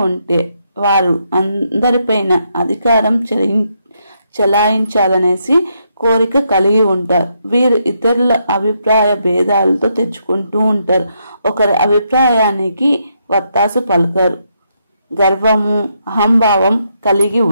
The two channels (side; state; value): both; inverted; correlation -0.78